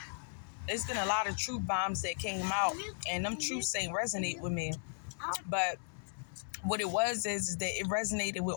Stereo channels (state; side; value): silent; right; digital silence